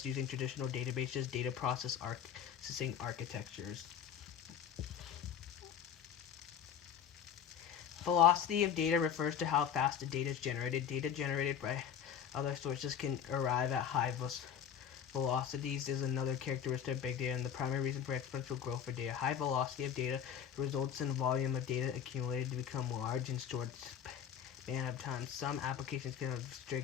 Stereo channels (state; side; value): quieter; right; 8.7 dB